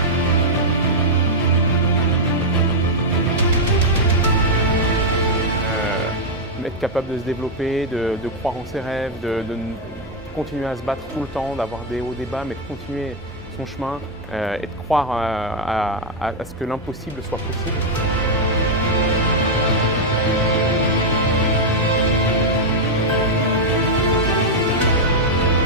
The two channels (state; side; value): normal; both; correlation -0.01